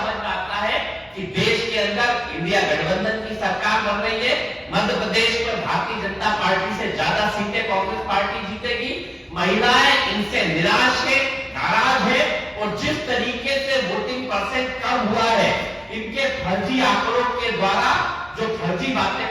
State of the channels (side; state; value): both; identical; correlation 1.00